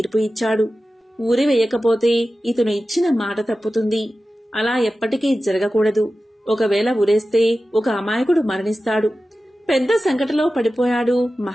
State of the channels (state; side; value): normal; both; correlation 0.94